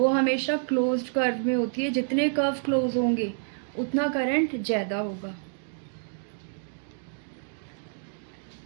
हमेशा क्लोज्ड कर्व में होती है, जितने कर्व क्लोज होंगे उतना करंट ज़्यादा होगा।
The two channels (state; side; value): silent; left; digital silence